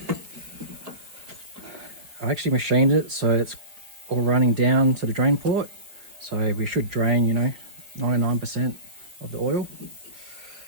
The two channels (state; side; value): late; left; 5.0 ms